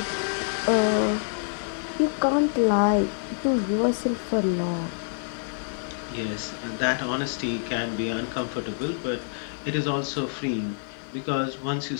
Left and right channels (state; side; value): silent; right; digital silence